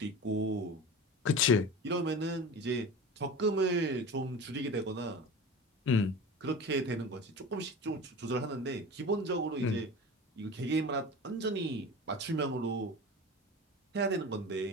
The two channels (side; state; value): both; normal; correlation 0.33